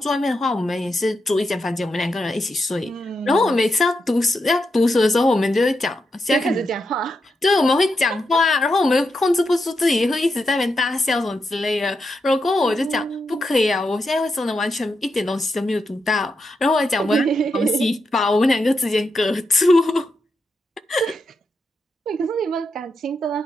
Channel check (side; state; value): both; normal; correlation 0.85